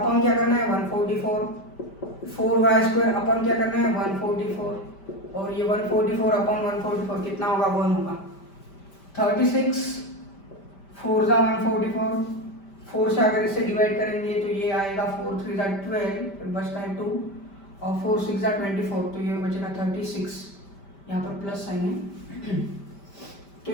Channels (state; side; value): late; right; 5.1 ms